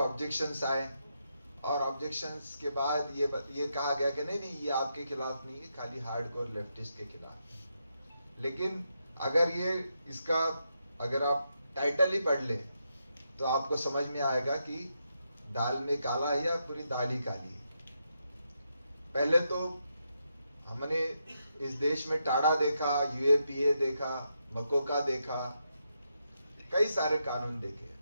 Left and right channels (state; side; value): inverted; both; correlation -0.82